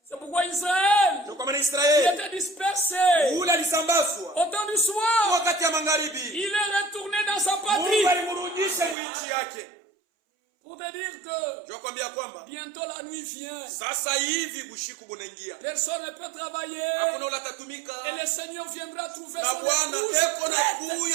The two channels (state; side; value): drops out; left; at 9.0 s